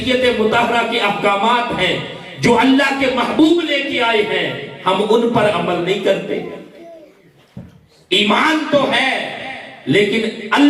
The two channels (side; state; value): both; identical; correlation 1.00